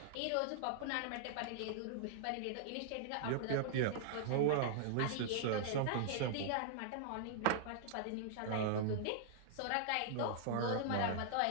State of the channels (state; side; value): different; both; correlation -0.01